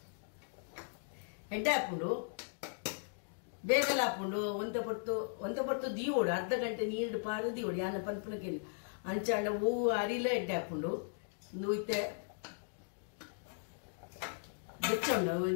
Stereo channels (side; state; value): right; silent; digital silence